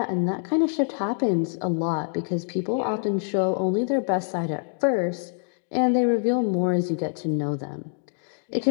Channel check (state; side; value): silent; right; digital silence